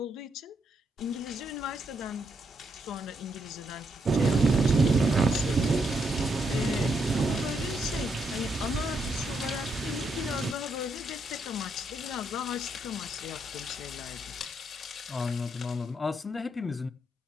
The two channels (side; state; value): both; normal; correlation 0.78